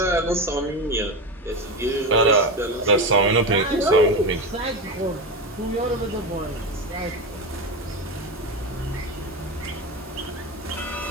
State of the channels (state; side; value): normal; both; correlation 0.18